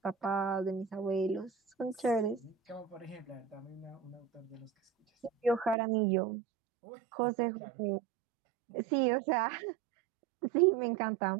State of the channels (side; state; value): left; drops out; at 5.8 s